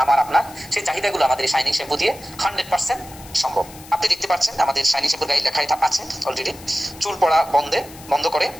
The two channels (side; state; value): left; noise; hiss, 19 dB below the sound